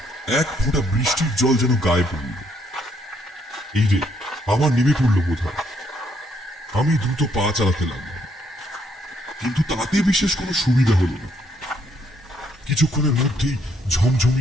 এক ফোঁটা বৃষ্টির জল যেন গায়ে পড়ল। এই রে, আমার নেমে পড়ল বোধ হয়। আমি দ্রুত পা চালাতে লাগলাম, কিন্তু তাতে বিশেষ কোনো সুবিধা হলো না। কিছুক্ষণের মধ্যেই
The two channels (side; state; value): both; normal; correlation 0.71